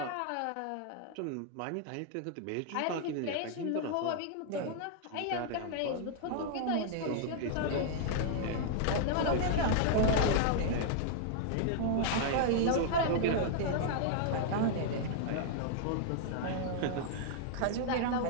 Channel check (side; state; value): both; different; correlation -0.01